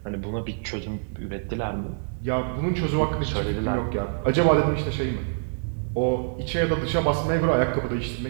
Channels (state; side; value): silent; left; 61 dB below the other